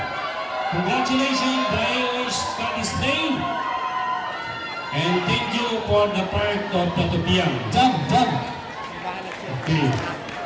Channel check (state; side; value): identical; both; correlation 1.00